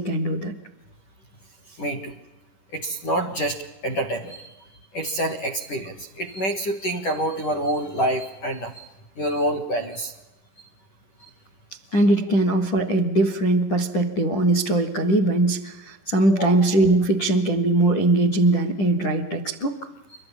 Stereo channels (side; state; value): right; late; 10 ms